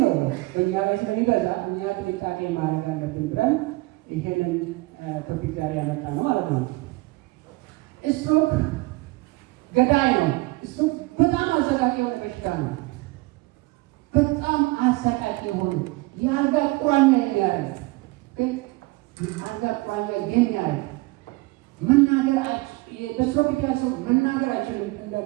ነው በእኛ ላይ ስለሚበዛ እኛ ጥንቃቄ ማድረግ አለብን ብለን ይሄንን ቶፒክ ዛሬ ያመጣ ነው ማለት ነው። ስትሮክ ገዳይ ነው። ስትሮክ በጣም አሰቃቂ የሆነ በሽታ ነው። በጣም አሰቃቂ የሆነ የአልጋ ቁራኛ የሚያደርግ ግን የአልጋ ቁራኛ የሚያደርግ መናገር በስትሮክ የተያዘው መናገር አይችልም። እንደ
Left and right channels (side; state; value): left; quieter; 22.7 dB